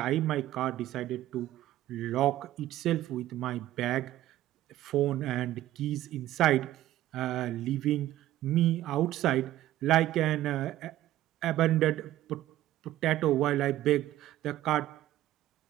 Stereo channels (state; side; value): quieter; left; 14.3 dB